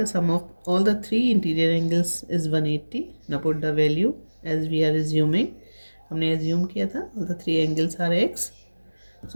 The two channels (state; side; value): inverted; both; correlation -1.00